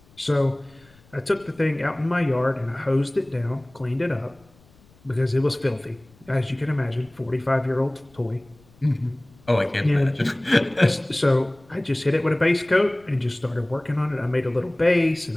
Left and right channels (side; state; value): left; noise; rumble, 29 dB below the sound